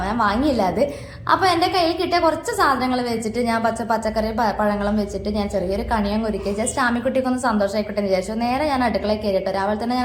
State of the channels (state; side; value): identical; both; correlation 1.00